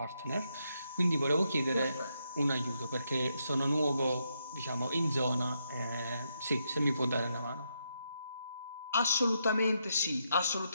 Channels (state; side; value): inverted; both; correlation -0.80